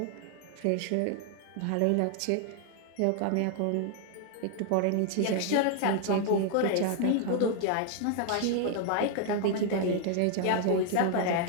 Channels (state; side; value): different; both; correlation 0.00